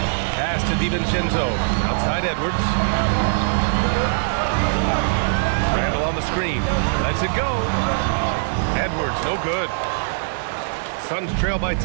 Pass to DiVincenzo. Outside Edwards. Randall on the screen. Lets it go. Edwards, no good. Suns trail by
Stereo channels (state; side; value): silent; left; digital silence